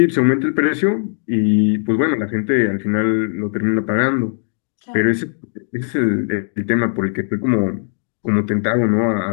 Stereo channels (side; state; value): right; silent; 67 dB below the other